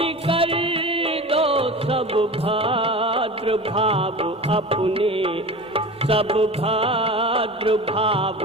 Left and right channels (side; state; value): both; normal; correlation 0.33